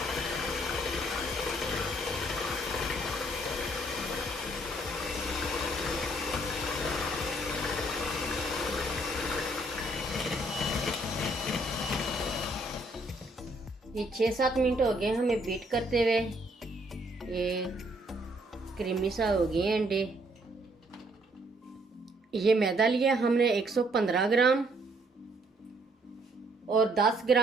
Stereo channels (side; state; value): both; normal; correlation 0.67